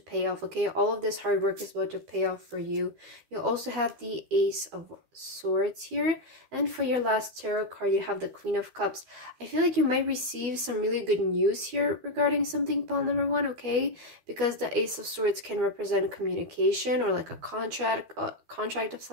off, okay? All of this hard work is about to pay off for you. You also have the Ace of Swords here, and for your last tarot card, you have the Queen of Cups. I feel like you might receive some really good news here regarding something, pile number 1, okay? Because the Ace of Swords can represent communication or like a contract of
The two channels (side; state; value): left; late; 12 ms